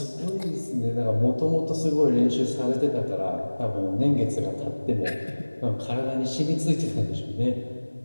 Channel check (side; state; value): both; inverted; correlation -1.00